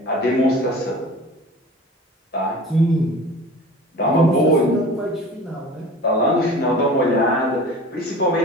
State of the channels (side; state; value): both; normal; correlation 0.39